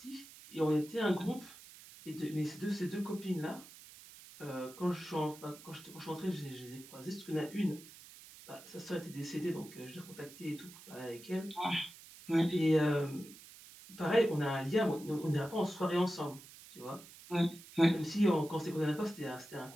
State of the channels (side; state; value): right; noise; hiss, 18 dB below the sound